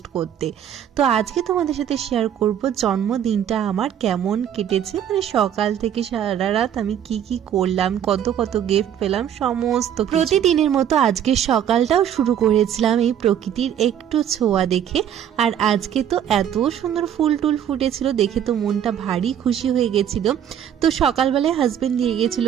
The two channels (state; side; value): quieter; left; 9.6 dB